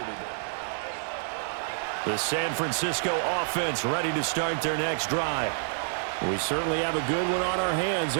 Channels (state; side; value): silent; left; digital silence